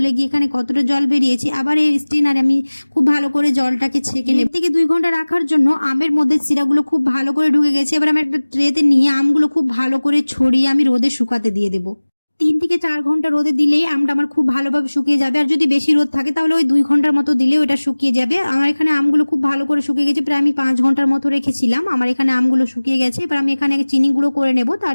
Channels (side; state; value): both; inverted; correlation -1.00